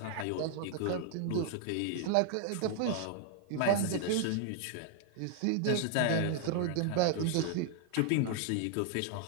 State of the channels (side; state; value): both; different; correlation 0.00